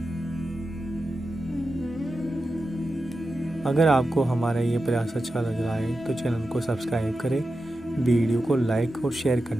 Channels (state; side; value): normal; both; correlation 0.91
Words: अगर आपको हमारा ये प्रयास अच्छा लग रहा है तो चैनल को सब्सक्राइब करें, वीडियो को लाइक और शेयर